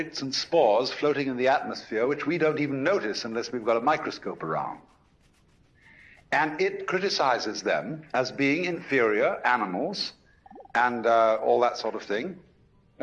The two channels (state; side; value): identical; both; correlation 1.00